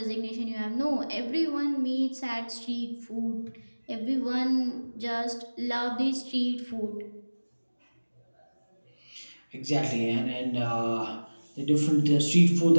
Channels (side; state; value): both; inverted; correlation -1.00